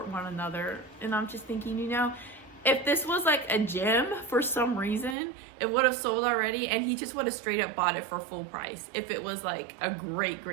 one another. And I'm just thinking, you know, if this was like a gem for some reason, it would have sold already, and he just would have straight up bought it for full price if it was like a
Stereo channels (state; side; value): drops out; left; at 5.2 s